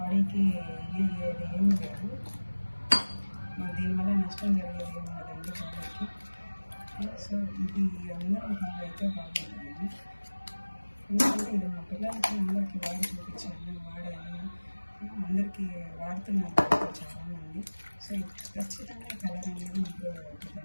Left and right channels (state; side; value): inverted; both; correlation -1.00